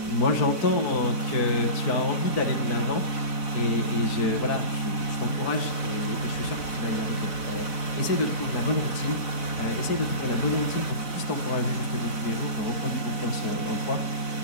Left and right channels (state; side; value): late; right; 4.0 ms